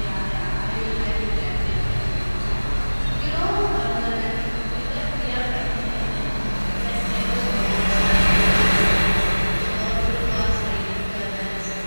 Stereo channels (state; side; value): inverted; both; correlation -1.00